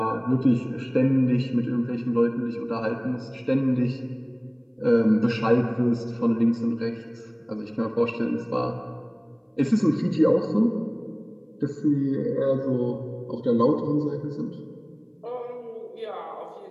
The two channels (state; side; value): identical; both; correlation 1.00